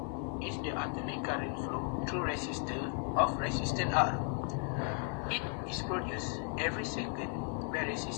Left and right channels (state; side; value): quieter; right; 38.4 dB